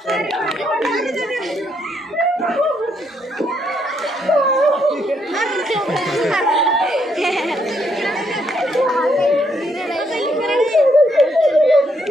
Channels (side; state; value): both; normal; correlation 0.74